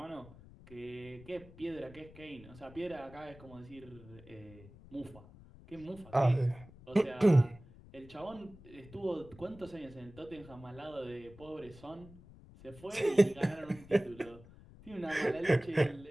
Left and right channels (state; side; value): noise; left; rumble, 20 dB below the sound